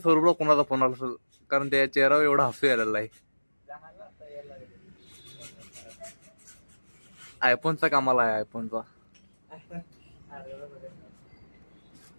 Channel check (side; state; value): both; inverted; correlation -1.00